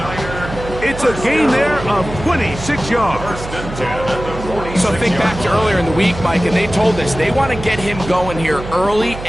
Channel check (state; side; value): noise; right; hum, 10 dB below the sound